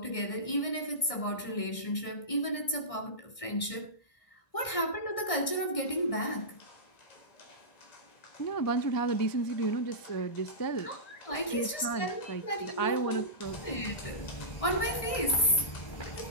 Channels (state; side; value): late; right; 1.6 ms